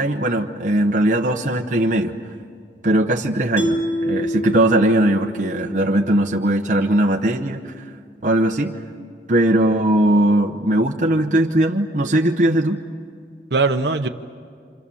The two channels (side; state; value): both; normal; correlation 0.59